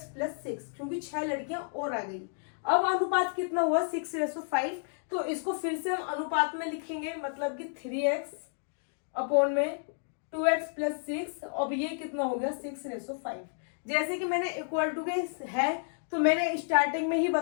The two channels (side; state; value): right; silent; digital silence